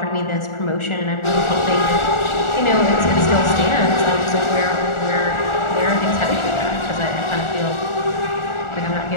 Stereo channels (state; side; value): late; right; 1.4 ms